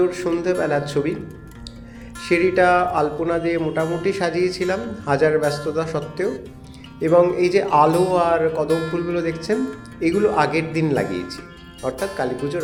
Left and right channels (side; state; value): both; identical; correlation 1.00